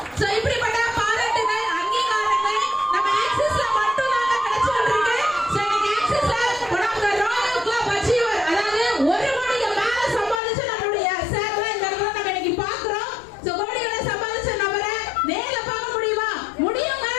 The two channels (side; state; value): right; drops out; at 10.4 s